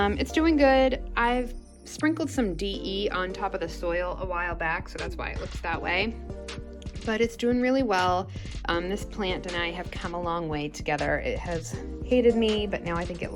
doing good. I've sprinkled some DE on top of the soil a while back, so that's why it looks that way. But it's doing really well. This plant and I have come a long way together. It has hated me, but now I think it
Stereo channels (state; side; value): identical; both; correlation 1.00